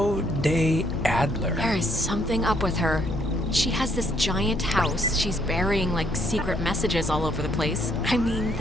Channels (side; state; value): both; normal; correlation 0.69